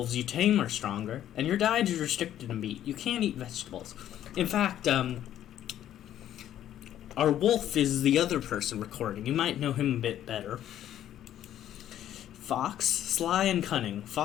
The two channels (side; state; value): right; quieter; 11.5 dB